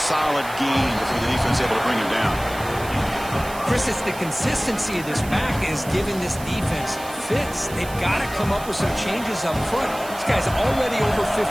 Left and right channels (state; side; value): noise; right; hiss, 15 dB below the sound